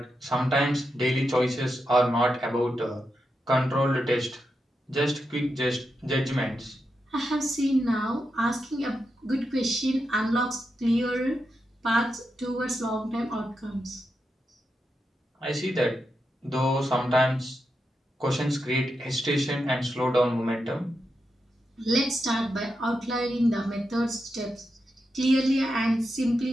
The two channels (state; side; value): normal; both; correlation 0.86